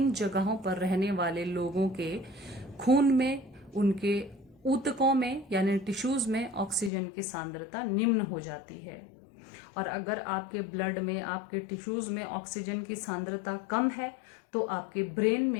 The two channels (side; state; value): right; drops out; at 6.9 s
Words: जगहों पर रहने वाले लोगों के खून में, उनके ऊतकों में यानी टिश्यूज में ऑक्सीजन की सांद्रता निम्न हो जाती है। और अगर आपके ब्लड में, आपके टिश्यूज में ऑक्सीजन की सांद्रता कम है, तो आपके ब्रेन